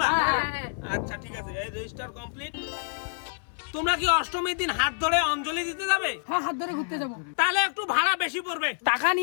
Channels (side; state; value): right; silent; 60 dB below the other